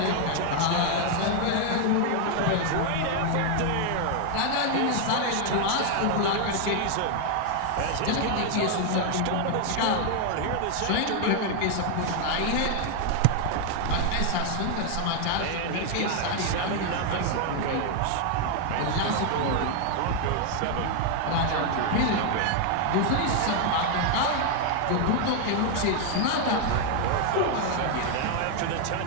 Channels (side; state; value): both; different; correlation 0.00